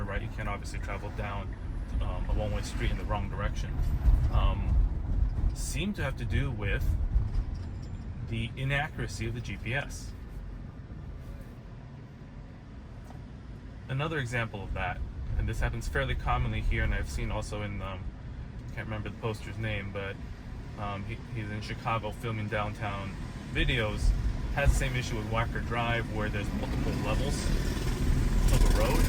right? You can't obviously travel down a one-way street in the wrong direction. seem to have to do with the inaccuracy of the GPS. Another example of that, and this happens fairly commonly here, and I've seen also in, I can't remember the poster's name, but he's in Chicago filming downtown videos, has the same issue with Wacker Drive where there's multiple levels of a road.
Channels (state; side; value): identical; both; correlation 1.00